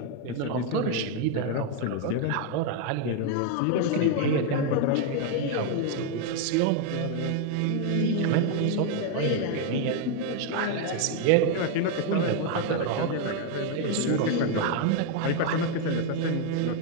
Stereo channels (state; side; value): different; both; correlation 0.01